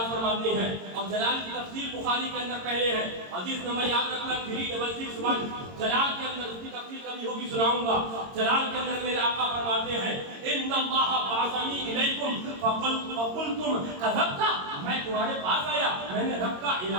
فرماتے ہیں، اور جلال کی تفسیر بخاری کے اندر پہلے ہے، حدیث نمبر یاد رکھنا 366. جلال کے اندر اس کی تفسیر کبھی ہوگی سناؤں گا. جلال کے اندر میرے آقا فرماتے ہیں ان اللہ بعثنی الیکم فقلتم کذبت، میں تمہارے پاس آیا، میں نے رب کا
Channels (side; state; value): left; late; 22 ms